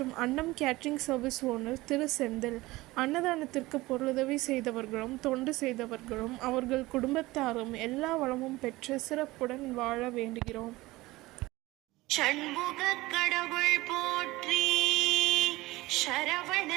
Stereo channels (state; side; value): quieter; left; 19.7 dB